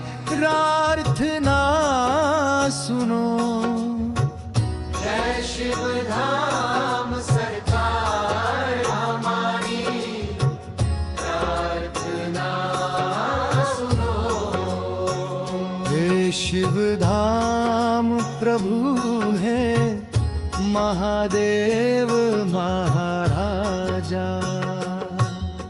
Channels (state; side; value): identical; both; correlation 1.00